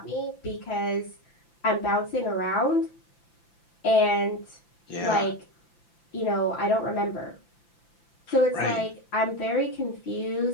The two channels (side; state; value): right; late; 5.9 ms